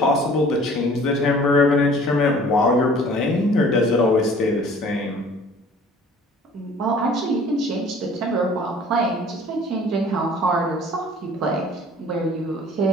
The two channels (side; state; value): both; normal; correlation 0.50